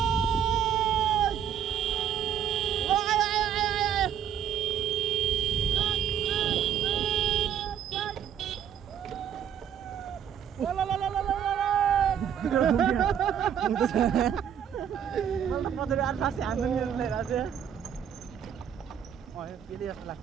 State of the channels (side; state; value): left; quieter; 8.9 dB